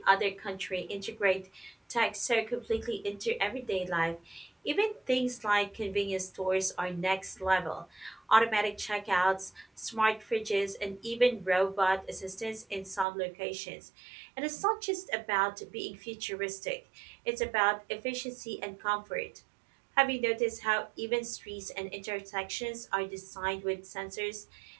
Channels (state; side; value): drops out; left; at 13.1 s